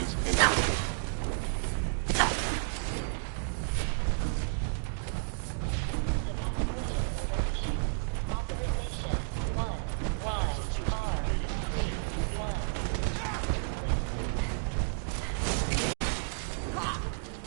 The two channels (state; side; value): silent; left; digital silence